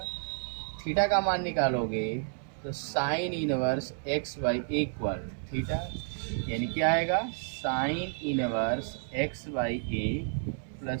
थीटा का मान निकालोगे तो sine inverse x by a equal theta, यानी क्या आएगा, sine inverse x by a plus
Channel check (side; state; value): left; silent; 57 dB below the other